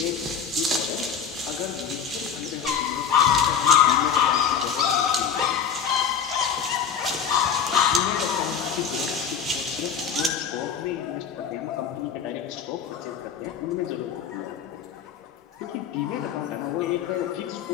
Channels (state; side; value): quieter; right; 7.3 dB